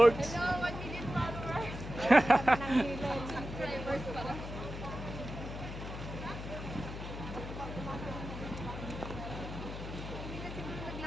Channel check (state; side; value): noise; left; hum, 8 dB below the sound